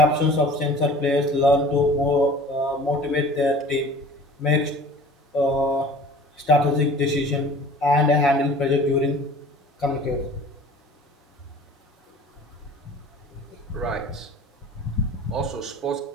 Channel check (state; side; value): normal; both; correlation 0.45